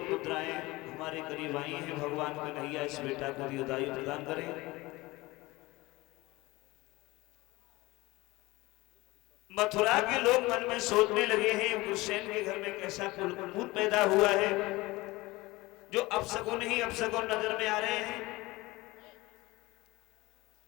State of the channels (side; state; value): right; quieter; 21.0 dB